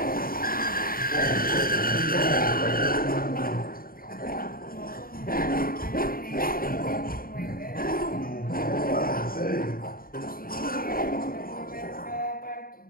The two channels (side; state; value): right; late; 0.42 ms